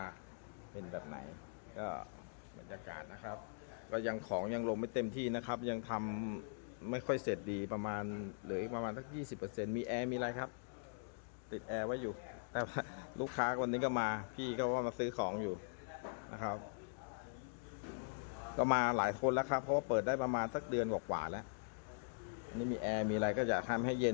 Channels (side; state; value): right; silent; digital silence